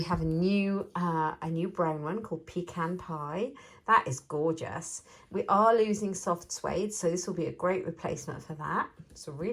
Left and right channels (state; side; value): identical; both; correlation 1.00